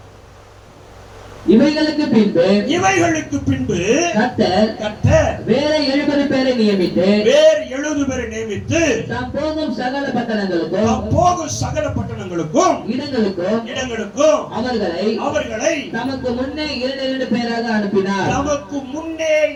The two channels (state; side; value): identical; both; correlation 1.00